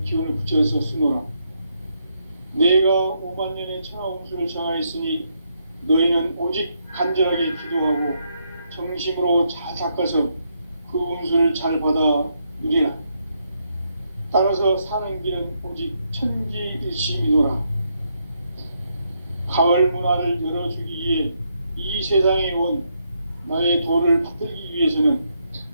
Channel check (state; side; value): inverted; both; correlation -0.77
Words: 기운을 붙여서 쓰노라. 내가 5만 년의 천하 운수를 정하였으니 너희는 오직 간절하게 기도하고 정심으로 잘 닦아서 그 운수를 잘 받아 누리라. 따라서 사는 길은 오직 천지일심이노라. 가을 문화를 열어주기 위해 이 세상에 온 나의 도를 받들기 위해서는